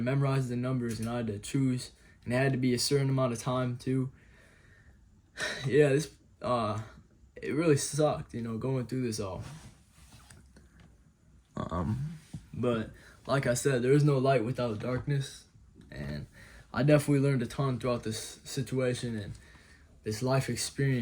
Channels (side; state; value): both; identical; correlation 1.00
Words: memorize the numbers, and I had to choose, and it had to be a certain amount of time too. This it really sucked, going through this all. But like I said, there is no light without darkness, and I definitely learned a ton throughout this situation and this life